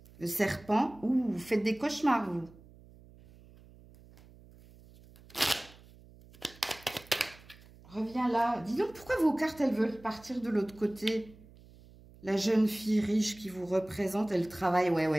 Le Serpent. Ouh, vous faites des cauchemars, vous. Reviens là. Dis donc, pourquoi vos cartes, elles veulent partir de l'autre côté? La jeune fille riche qui vous représente, elle travaille. Ouais,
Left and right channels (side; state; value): right; noise; hum, 23 dB below the sound